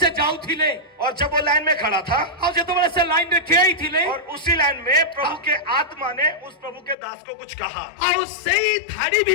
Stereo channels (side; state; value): right; drops out; at 7.0 s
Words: ଯାଉଥିଲେ। और जब वो लाइन में खड़ा था ଆଉ ଯେତେବେଳେ ସେ ଲାଇନ ରେ ଠିଆ ହେଇଥିଲେ और उसी लाइन में प्रभु के आत्मा ने उस प्रभु के दास को कुछ कहा। ଆଉ ସେଇ ଧାଡି